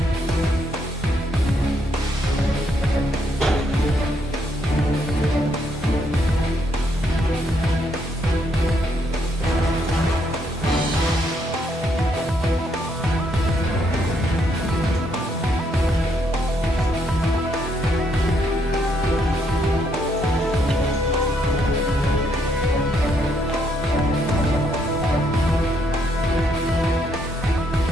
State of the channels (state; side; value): normal; both; correlation 0.73